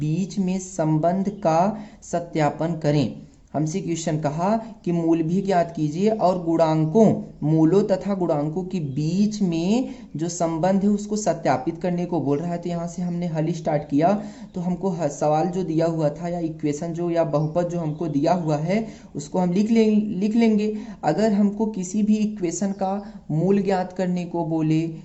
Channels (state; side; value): identical; both; correlation 1.00